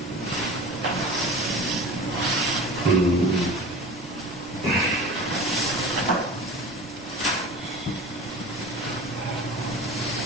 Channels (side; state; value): both; normal; correlation 0.36